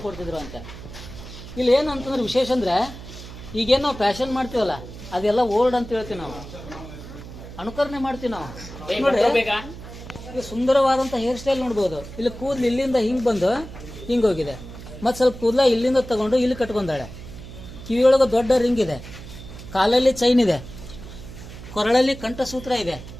ಕೊಡ್ತಿದ್ರು ಅಂತ. ಇಲ್ಲಿ ಏನಂತಂದ್ರೆ ವಿಶೇಷ ಅಂದ್ರೆ, ಈಗೇನು ನಾವು ಫ್ಯಾಷನ್ ಮಾಡ್ತೀವಲ್ಲ, ಅದೆಲ್ಲ ಓಲ್ಡ್ ಅಂತ ಹೇಳ್ತೀವಿ ನಾವು, ಅನುಕರಣೆ ಮಾಡ್ತೀವಿ ನಾವು. ನೋಡಿ, ಈಗ ಸುಂದರವಾದಂಥ ಹೇರ್ ಸ್ಟೈಲ್ ನೋಡ್ಬೋದು. ಇಲ್ಲಿ ಕೂದಲು ಇಲ್ಲಿಂದ ಹಿಂಗೆ ಬಂದು ಹಿಂಗೆ ಹೋಗಿದೆ, ಮತ್ತು ಸ್ವಲ್ಪ ಕೂದಲ ಇಲ್ಲಿಂದ ತಗೊಂಡು ಇಲ್ಲಿ ಕಟ್ಕೊಂಡಾಳೆ. ಕಿವಿಯೊಳಗೆ ದೊಡ್ಡ ರಿಂಗ್ ಇದೆ, ಕಾಲಲ್ಲಿ ಚೈನ್ ಇದೆ, ಕೊರಳಲ್ಲಿ ಕಂಠಸೂತ್ರ ಇದೆ,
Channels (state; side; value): noise; right; hum, 14 dB below the sound